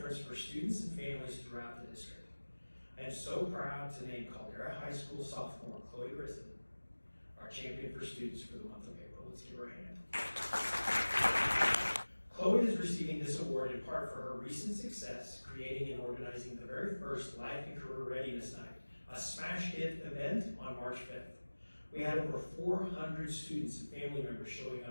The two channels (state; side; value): inverted; both; correlation -1.00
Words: for students and families throughout the district. I am so proud to name Caldera High School sophomore Chloe Grissen our champion for students for the month of April. Let's give her a hand. Chloe is receiving this award in part for her recent success creating and organizing the very first Life and Career Readiness Night, a smash hit event on March 5th. We had over 400 students and family members showing